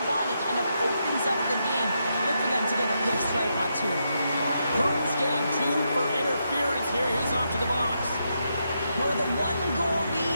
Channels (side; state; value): both; inverted; correlation -0.82